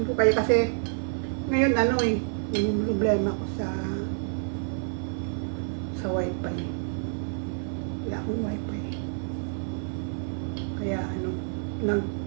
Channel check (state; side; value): silent; left; digital silence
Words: ko kayo kasi ngayon yung problema ko sa wifi. Wala akong wifi. Kaya na